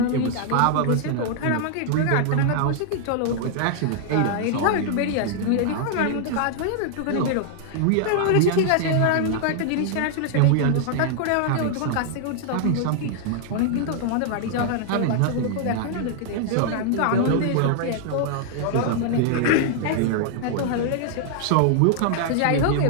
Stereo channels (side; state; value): both; different; correlation -0.01